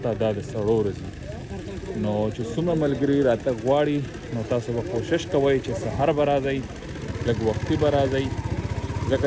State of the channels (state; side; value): identical; both; correlation 1.00